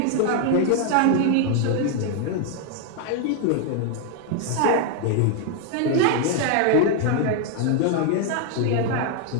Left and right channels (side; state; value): both; different; correlation 0.00